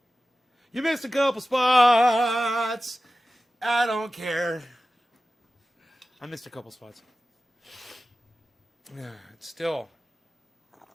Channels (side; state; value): both; normal; correlation 0.95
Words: You missed a couple spots. I don't care. I missed a couple spots. Still,